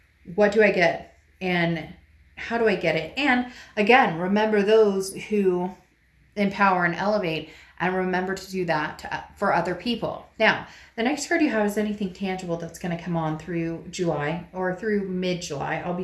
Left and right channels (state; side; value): identical; both; correlation 1.00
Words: what do I get, and how do I get it? And again, remember those who empower and elevate, and remember to do that for other people. Now, the next card you have is anything tangible that's going to come on through July or through mid-July. I'll